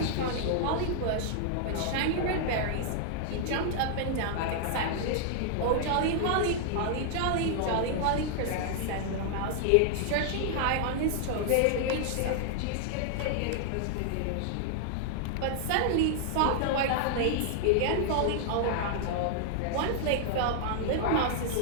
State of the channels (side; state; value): both; different; correlation -0.01